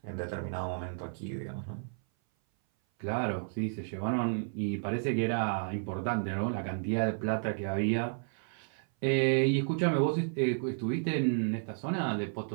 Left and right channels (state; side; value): silent; left; 56 dB below the other